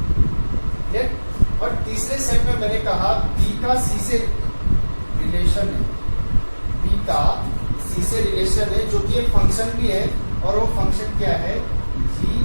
क्लियर? और तीसरे सेट में मैंने कहा बी का सी से रिलेशन है, बी का सी से रिलेशन है, जो कि एक फंक्शन भी है। और वो फंक्शन क्या है? G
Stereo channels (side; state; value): both; inverted; correlation -1.00